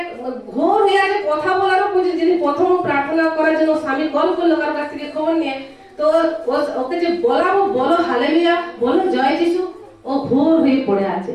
ঘোর হয়ে আছে, কথা বলারও উচিত। যিনি প্রথম প্রার্থনা করার জন্য স্বামী কল করলো কারোর কাছ থেকে খবর নিয়ে, তো ওকে যে বলাবো, বলো হালেলুয়া, বলো জয় যিশু, ও ঘোর হয়ে পড়ে আছে।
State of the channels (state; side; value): identical; both; correlation 1.00